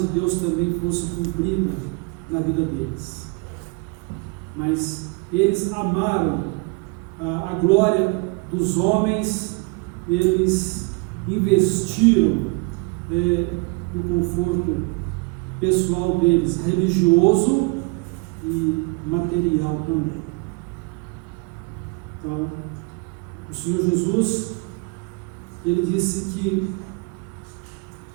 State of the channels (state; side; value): quieter; left; 28.3 dB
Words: Deus também fosse cumprida na vida deles. Mas eles amaram a glória dos homens, eles investiram no conforto pessoal deles, religioso e material também. Então, o Senhor Jesus, ele disse que